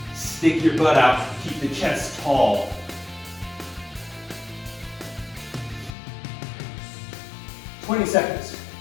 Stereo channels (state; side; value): drops out; right; at 5.9 s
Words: Stick your butt out, keep the chest tall. "20 seconds.